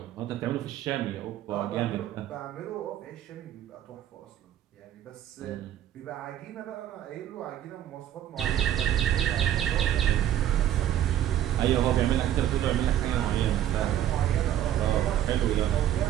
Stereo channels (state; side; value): quieter; left; 11.6 dB